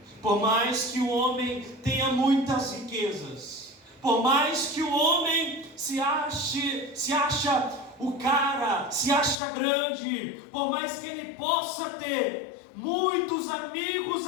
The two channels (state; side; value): drops out; right; at 9.4 s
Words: por mais que o homem tenha muitas riquezas, por mais que o homem se acha o cara, se acha grande, por mais que ele possa ter muitos amigos